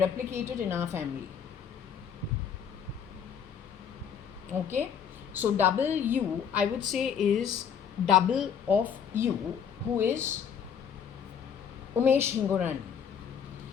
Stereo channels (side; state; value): right; quieter; 7.7 dB